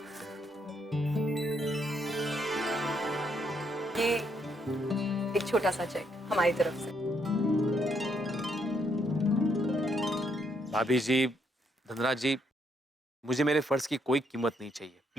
ये एक छोटा सा चेक हमारी तरफ से। भाभी जी, धनराज जी, मुझे मेरे फर्ज की कोई कीमत नहीं चाहिए,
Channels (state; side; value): normal; both; correlation 0.74